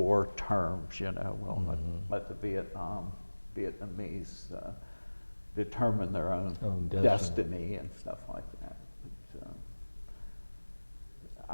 terms, you know, well, let the Vietnamese determine their own destiny and stuff like that. But,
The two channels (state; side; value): inverted; both; correlation -1.00